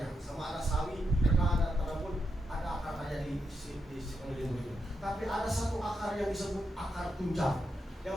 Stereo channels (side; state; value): both; normal; correlation 0.84